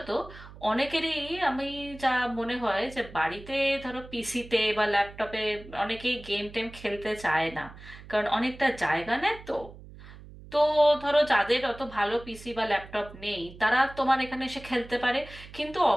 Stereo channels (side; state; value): right; noise; hum, 17 dB below the sound